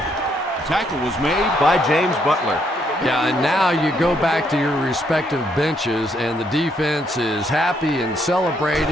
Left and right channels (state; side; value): normal; both; correlation 0.72